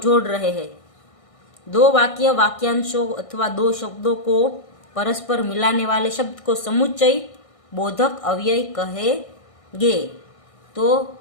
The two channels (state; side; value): late; right; 1.6 ms